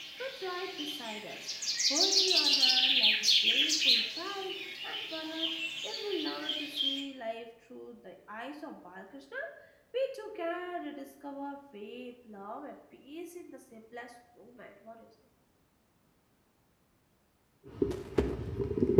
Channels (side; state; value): both; identical; correlation 1.00